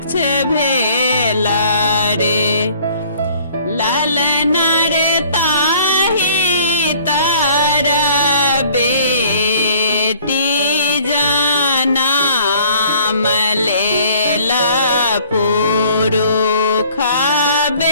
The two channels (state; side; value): inverted; both; correlation -0.55